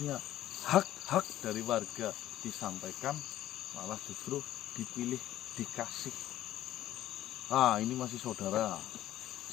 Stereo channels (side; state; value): right; quieter; 13.4 dB